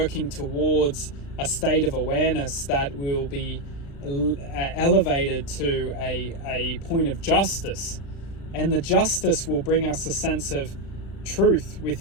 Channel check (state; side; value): late; right; 36 ms